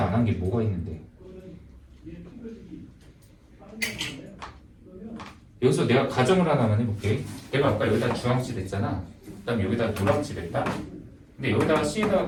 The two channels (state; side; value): identical; both; correlation 1.00